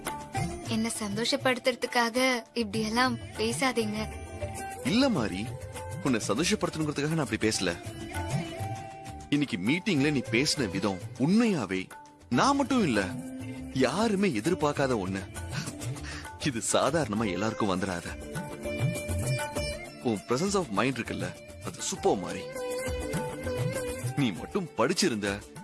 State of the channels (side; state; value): both; identical; correlation 1.00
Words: என்ன சந்தோஷப்படுத்துறதுக்காக இப்படி எல்லாம் பேசாதீங்க. இல்ல மாறி, உன்னை சந்தோஷப்படுத்தணுங்கிறதுக்காக நான் அப்படி பேசல. இன்னைக்கு மீட்டிங்ல நீ பேசின விதம் உண்மையாவே நான் மட்டும் இல்ல, யாருமே எதிர்பார்க்காத ஒண்ணு. இது சாதாரணமா எல்லாருக்கும் வந்துடாத. உன் பிரசன்ஸ் ஆஃப் மைண்ட் இருக்குல்ல, அது சூப்பர் மாறி. நீ மட்டும் படிச்சிருந்த